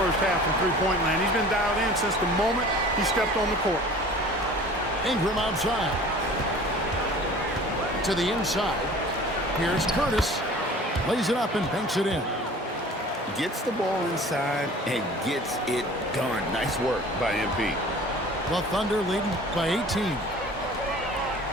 half from three-point land. He's been dialed in since the moment he stepped on the court. Ingram outside. To the inside. Here's Curtis. Lays it up and banks it in. Gets the ball inside and gets it done. Nice work by MP. The Thunder leading by 18.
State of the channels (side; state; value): both; normal; correlation 0.45